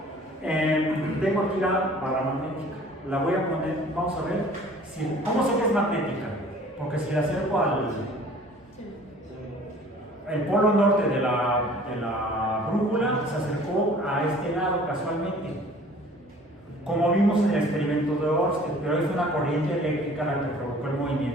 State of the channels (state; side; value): normal; both; correlation 0.50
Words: Tengo aquí la barra magnética. La voy a poner, vamos a ver. ¿Cómo sé que es magnética? Porque si la acerco el polo norte de la brújula se acercó a este lado casualmente, como vimos en el experimento de Ørsted, pero es una corriente eléctrica la que provocó el